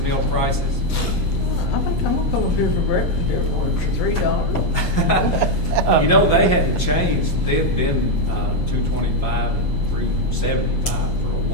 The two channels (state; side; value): late; right; 15 ms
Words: meal prices? I think I'm gonna come up here for breakfast every morning for $3. They hadn't changed. They've been $2.25 and $3.75 for a